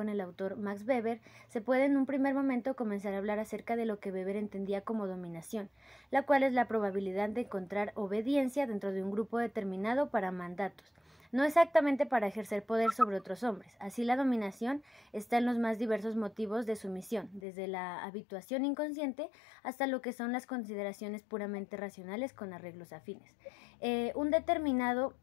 el autor Max Weber, se puede en un primer momento comenzar a hablar acerca de lo que Weber entendía como dominación, la cual es la probabilidad de encontrar obediencia dentro de un grupo determinado para mandatos, no exactamente para ejercer poder sobre otros hombres. Así la dominación está en los más diversos motivos de sumisión, desde la habituación inconsciente hasta lo que son las consideraciones puramente racionales con arreglos afines. Un determinado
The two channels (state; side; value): drops out; right; at 17.4 s